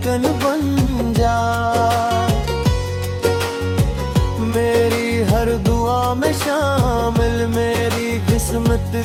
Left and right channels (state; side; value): identical; both; correlation 1.00